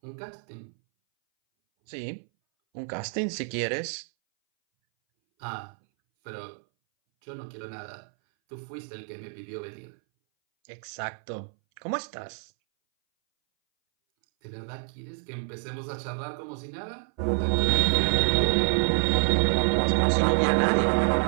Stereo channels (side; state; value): left; silent; 60 dB below the other